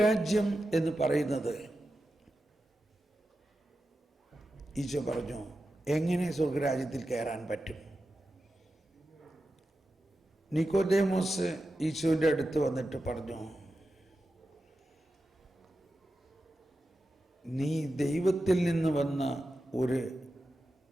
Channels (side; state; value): both; normal; correlation 0.91